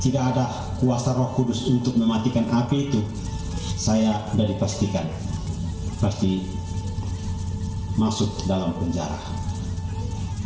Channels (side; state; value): both; identical; correlation 1.00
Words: tidak ada kuasa Roh Kudus untuk mematikan api itu, saya sudah dipastikan pasti masuk dalam penjara.